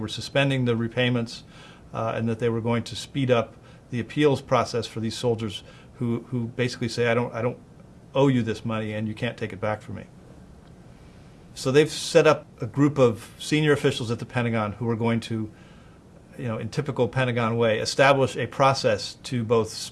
suspending the repayments and that they were going to speed up the appeals process for these soldiers who basically say, I don't owe you this money and you can't take it back from me. So they've set up a group of senior officials at the Pentagon who are going to, in typical Pentagon way, establish a process to both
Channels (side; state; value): both; identical; correlation 1.00